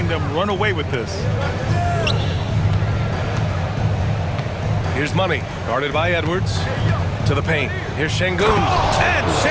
them run away with this. Here's Money, guarded by Edwards. To the paint. Here's Şengün. And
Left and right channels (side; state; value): both; identical; correlation 1.00